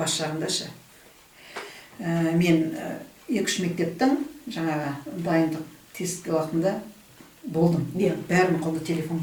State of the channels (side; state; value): both; identical; correlation 1.00